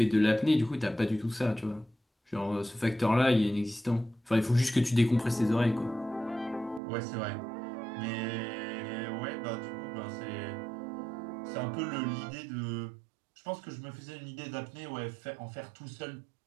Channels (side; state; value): left; drops out; at 6.8 s